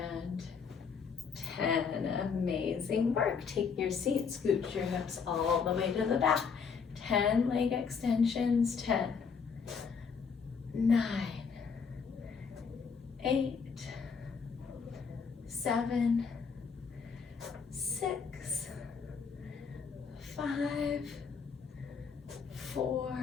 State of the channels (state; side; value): quieter; right; 5.9 dB